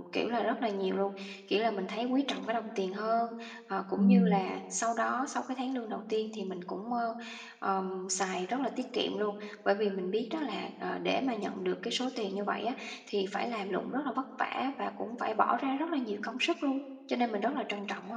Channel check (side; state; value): both; identical; correlation 1.00